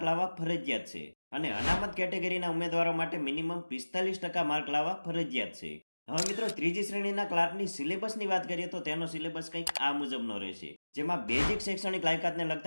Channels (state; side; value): inverted; both; correlation -1.00